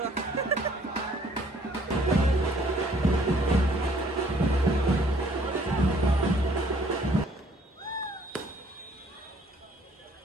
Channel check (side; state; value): both; normal; correlation 0.61